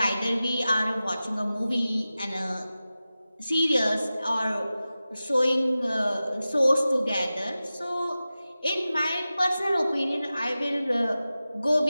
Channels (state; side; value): inverted; both; correlation -0.95